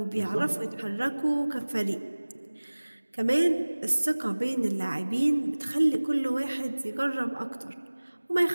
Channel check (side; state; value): both; inverted; correlation -1.00